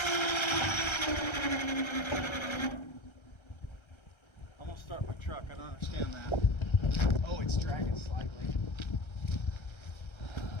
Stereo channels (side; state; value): right; late; 1.3 ms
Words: I'm gonna start my truck. I don't understand that. Oh, it's dragging slightly.